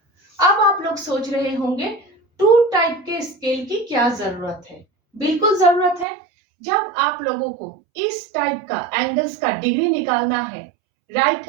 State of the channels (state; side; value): drops out; left; at 6.1 s